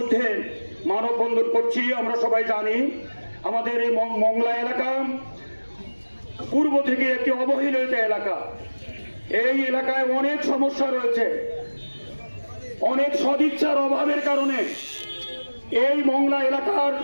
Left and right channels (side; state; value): both; inverted; correlation -1.00